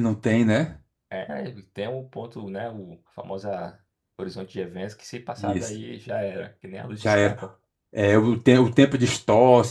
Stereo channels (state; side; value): identical; both; correlation 1.00